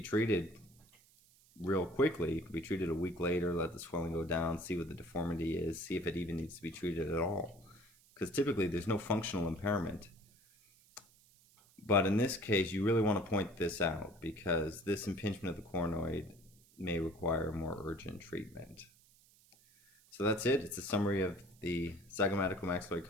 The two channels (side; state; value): right; noise; hiss, 28 dB below the sound